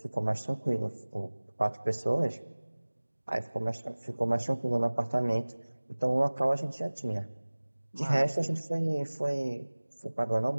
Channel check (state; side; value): inverted; both; correlation -1.00